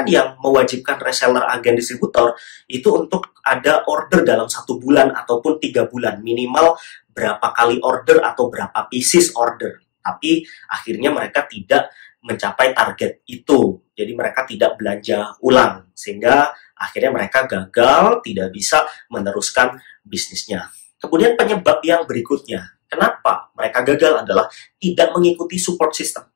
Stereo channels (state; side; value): quieter; right; 30.8 dB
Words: yang mewajibkan reseller, agen, distributor itu untuk ada order dalam 1 bulan ataupun 3 bulan. Minimal berapa kali order atau berapa pieces order. Tapi akhirnya mereka tidak mencapai target itu. Jadi mereka tidak belanja ulang. Sehingga akhirnya mereka gagal, tidak bisa meneruskan bisnisnya. Kemudian penyebab yang berikutnya, kenapa mereka gagal adalah tidak mengikuti support system.